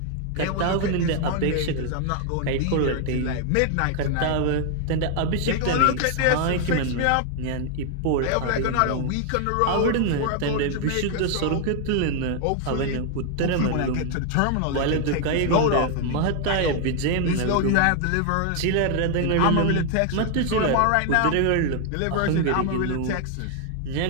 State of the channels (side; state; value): both; different; correlation 0.00